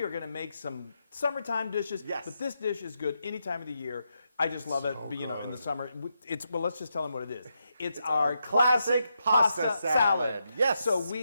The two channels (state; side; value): inverted; both; correlation -0.84